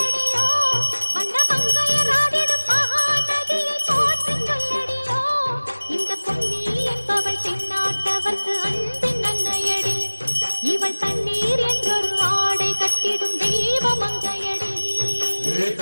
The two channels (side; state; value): both; inverted; correlation -1.00